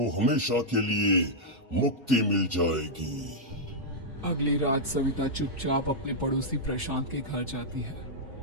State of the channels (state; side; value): normal; both; correlation -0.07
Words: हमेशा के लिए मुक्ति मिल जाएगी। अगली रात सविता चुपचाप अपने पड़ोसी प्रशांत के घर जाती है।